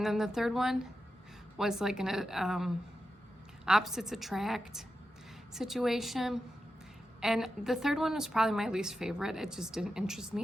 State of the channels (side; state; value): both; normal; correlation 0.89